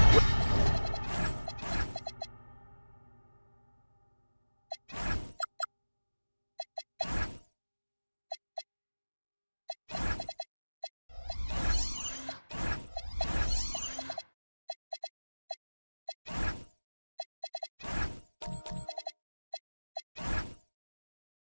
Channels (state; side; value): inverted; both; correlation -1.00